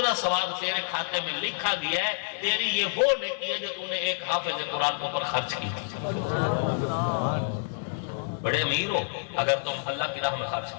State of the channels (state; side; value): silent; right; 59 dB below the other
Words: ثواب تیرے کھاتے میں لکھا گیا ہے۔ تیری یہ وہ نیکی ہے جو تو نے ایک حافظ قرآن کے اوپر خرچ کی۔ بڑے امیر ہو اگر تم اللہ کی راہ میں خرچ